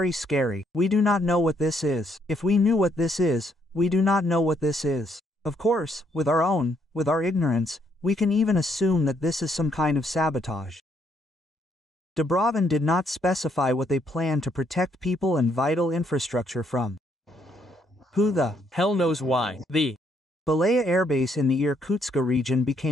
scary. We do not know what this is. If we knew what this is, we do not know what this is. Of course, with our ignorance, we can even assume that this is some kind of sabotage. Dubrovin did not specify what they plan to protect people and vital infrastructure from. Who the hell knows why? The Belaya airbase in the Irkutsk region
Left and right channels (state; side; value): normal; both; correlation 0.72